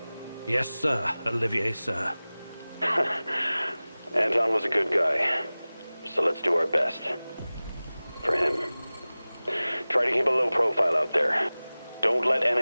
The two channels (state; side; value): inverted; both; correlation -0.98